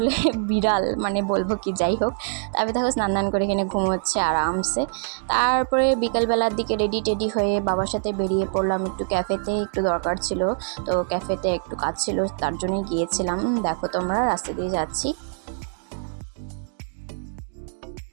বিড়াল, মানে বলবো কি, যাই হোক। তারপরে দেখো স্নান করে এখানে ঘুমোচ্ছে আরামসে। তারপরে বিকালবেলার দিকে রেডি টেডি হয়ে বাবার সাথে বেরিয়ে পড়লাম একটু ক্যাফেতে, একটু দরকার ছিল। তো ক্যাফেতে একটু কাজ ছিল, তার জন্যই গিয়েছিলাম। দেখো তোমরা, রাস্তা দিয়ে যাচ্ছি।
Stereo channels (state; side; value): silent; left; digital silence